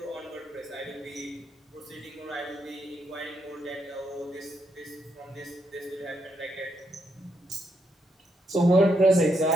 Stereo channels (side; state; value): both; normal; correlation 0.79